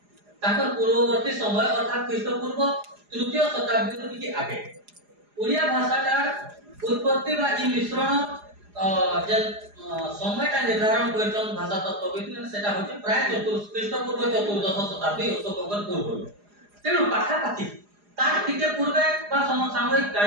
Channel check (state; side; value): late; left; 4.9 ms